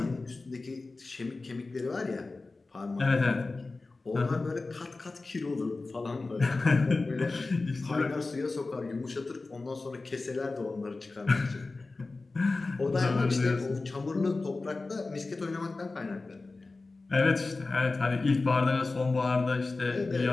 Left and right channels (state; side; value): quieter; right; 3.5 dB